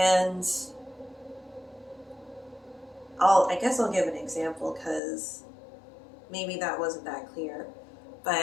I guess I'll give an example, because maybe that wasn't that clear.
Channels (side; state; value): right; drops out; at 5.0 s